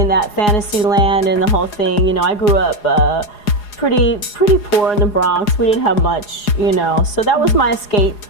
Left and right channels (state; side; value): late; right; 4.8 ms